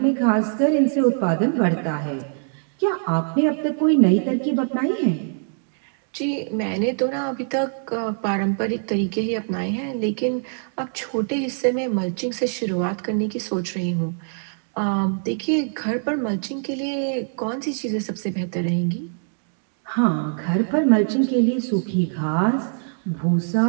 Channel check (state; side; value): silent; left; digital silence